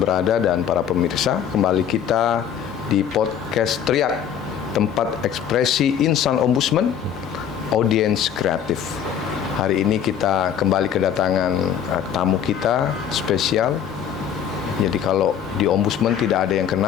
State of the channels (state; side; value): quieter; right; 8.8 dB